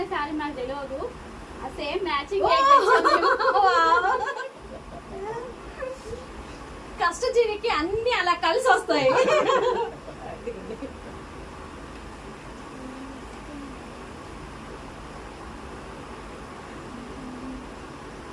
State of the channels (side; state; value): both; identical; correlation 1.00